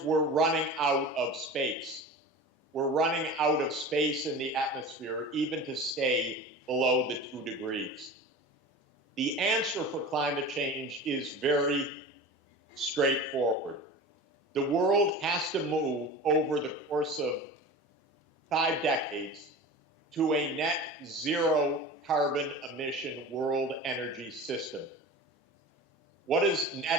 we're running out of space. We're running out of space in the atmosphere, even to stay below the 2 degrees. The answer for climate change is very straightforward. The world has to move over the course of 5 decades to a net zero carbon emission world energy system. What does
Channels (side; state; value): both; normal; correlation 0.34